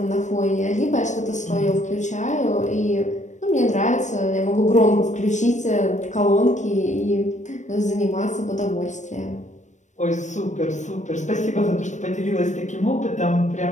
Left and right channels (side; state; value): right; late; 0.35 ms